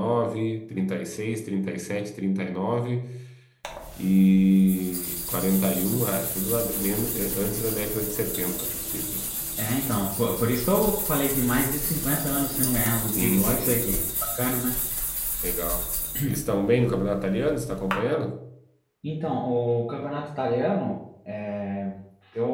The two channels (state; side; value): identical; both; correlation 1.00